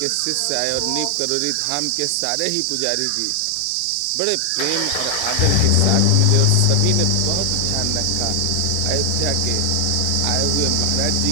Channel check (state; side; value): different; both; correlation 0.00